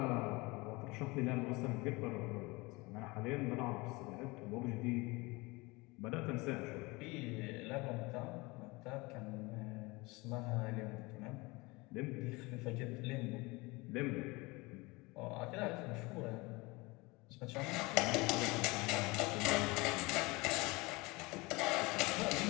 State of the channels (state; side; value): quieter; right; 24.3 dB